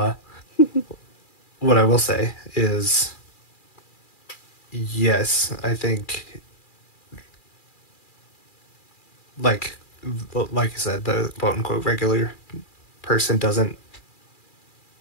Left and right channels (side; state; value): right; late; 2.4 ms